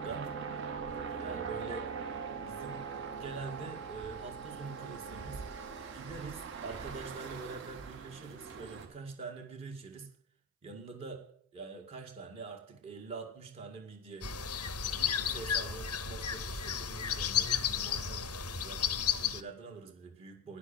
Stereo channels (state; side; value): quieter; right; 3.0 dB